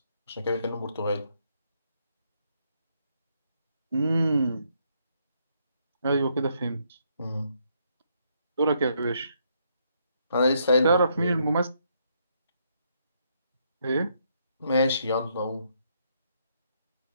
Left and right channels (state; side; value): inverted; both; correlation -0.73